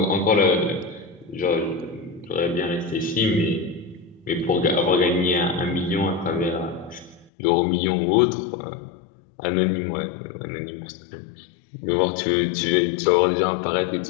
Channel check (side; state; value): right; drops out; at 7.3 s